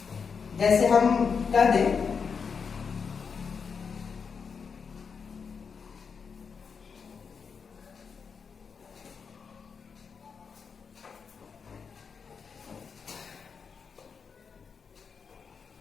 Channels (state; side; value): quieter; right; 5.9 dB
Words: जैसे हम कह दें